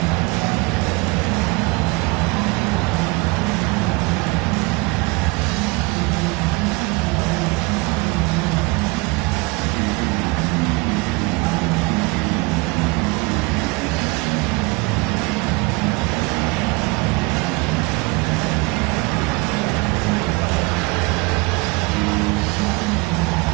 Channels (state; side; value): quieter; left; 25.8 dB